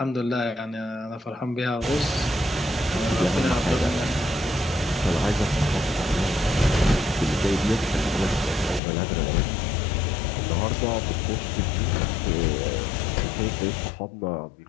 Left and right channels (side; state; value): right; drops out; at 8.8 s